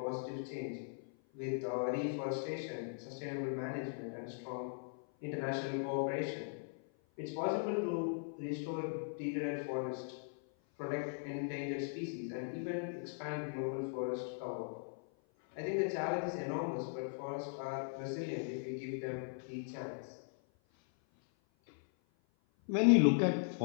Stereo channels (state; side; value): silent; right; 52 dB below the other